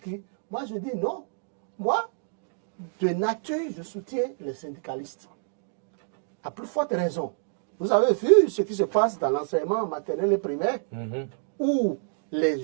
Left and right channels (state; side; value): silent; left; digital silence